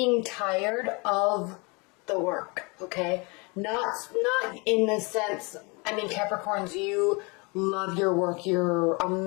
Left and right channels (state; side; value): quieter; right; 29.2 dB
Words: tired of the work, okay? Not in the sense, I mean, Capricorns, you love your work, you're